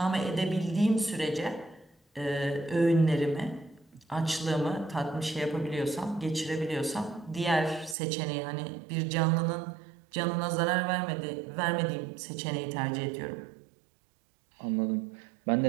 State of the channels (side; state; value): left; drops out; at 8.0 s